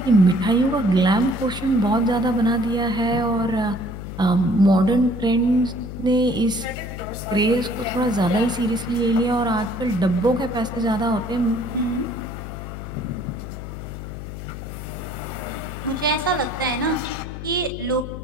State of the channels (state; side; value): noise; left; hum, 9 dB below the sound